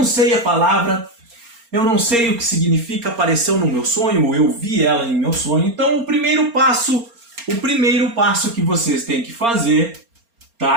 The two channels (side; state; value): left; late; 4.3 ms